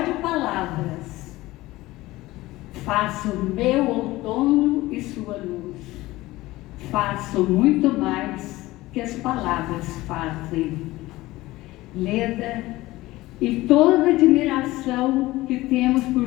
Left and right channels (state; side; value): quieter; right; 18.4 dB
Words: palavras faço meu outono e sua luz. Faço muito mais que as palavras fazem. Leda, e toda a admiração que temos por